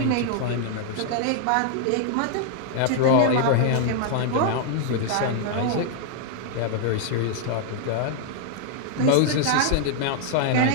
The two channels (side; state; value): both; different; correlation 0.00